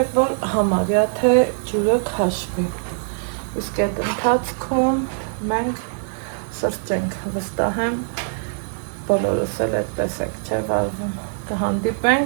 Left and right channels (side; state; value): left; silent; digital silence